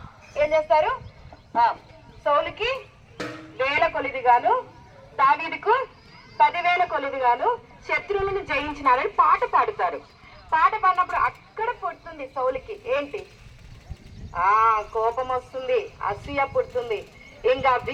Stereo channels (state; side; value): identical; both; correlation 1.00